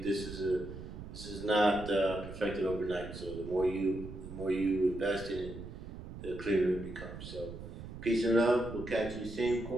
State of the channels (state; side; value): noise; right; rumble, 11 dB below the sound